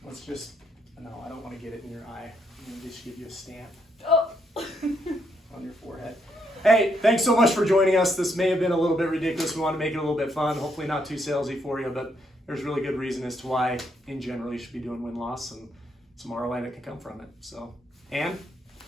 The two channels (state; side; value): normal; both; correlation 0.75